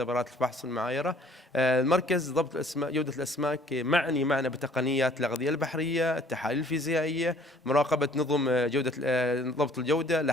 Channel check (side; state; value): both; normal; correlation 0.57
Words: الفحص والمعايرة. المركز ضبط الأسماك، جودة الأسماك معني معنا بتقنيات الأغذية البحرية، التحاليل الفيزيائية، مراقبة نظم جودة ضبط الجودة،